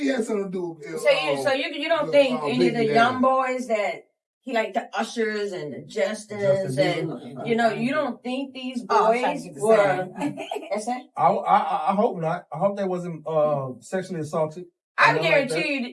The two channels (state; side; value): identical; both; correlation 1.00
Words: had something to do with So you don't think any of the young boys that he like the ushers and the Justins and you don't think these boys were? That's it. I hope not. I hope they wasn't sexually assaulted. I Nothing guarantee like that.